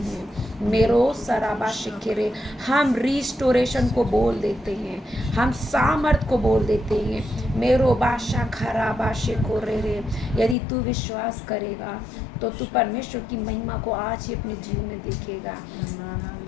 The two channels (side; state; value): right; drops out; at 10.6 s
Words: मेरो सराबा शिखरे, हम रिस्टोरेशन को बोल देते हैं, हम सामर्थ को बोल देते हैं। मेरो बाशा खराबा शिखो रे। यदि तू विश्वास करेगा तो तू परमेश्वर की महिमा को आज ही अपने जीवन में देखेगा।